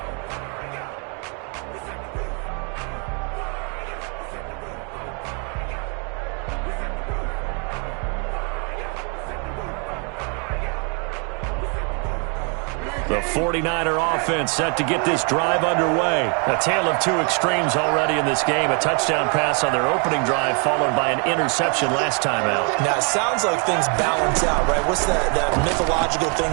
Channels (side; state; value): left; quieter; 36.8 dB